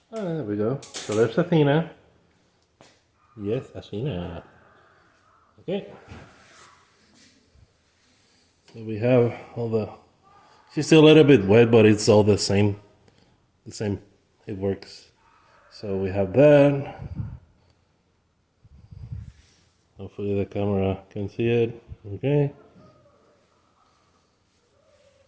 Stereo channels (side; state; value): both; identical; correlation 1.00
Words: There we go. So there's Athena. Yes, Athena. Okay. So we have all the. She's still a little bit wet, but it's all the same. The same. It works. So we have that. Hopefully the camera can see it. Okay.